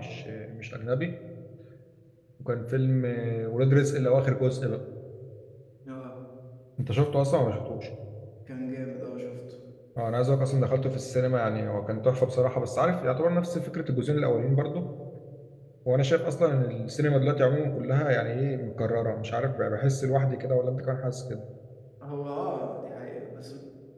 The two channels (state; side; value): identical; both; correlation 1.00